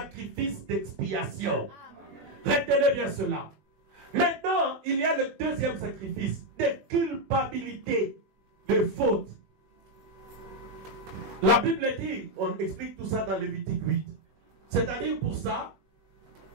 d'expiation. Retenez bien cela. Maintenant, il y a le deuxième sacrifice de culpabilité, de faute. La Bible dit, on explique tout ça dans Lévitique 8. C'est-à-dire pour ça,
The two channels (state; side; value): late; left; 21 ms